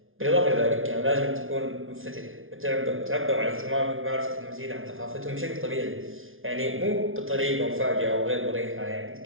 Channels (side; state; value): left; late; 0.59 ms